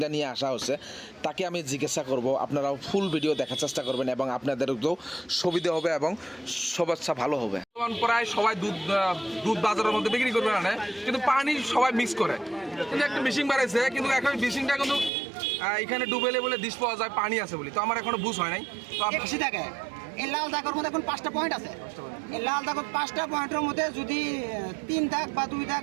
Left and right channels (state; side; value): drops out; left; at 15.1 s